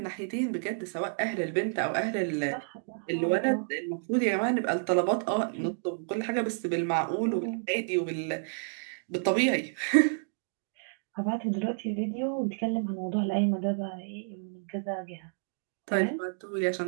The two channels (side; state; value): left; silent; digital silence